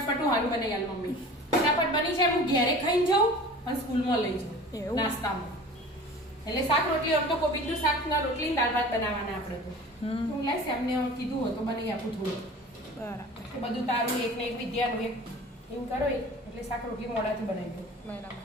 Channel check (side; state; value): both; normal; correlation 0.41